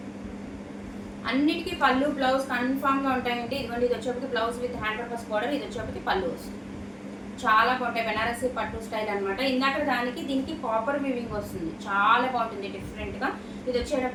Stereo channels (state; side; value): identical; both; correlation 1.00